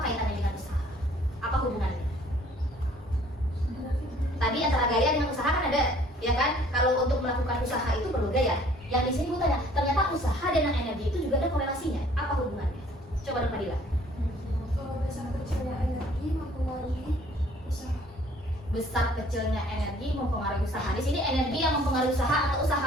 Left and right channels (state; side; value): normal; both; correlation 0.57